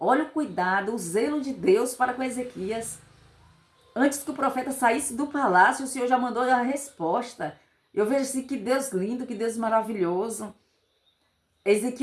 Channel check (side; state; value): both; identical; correlation 1.00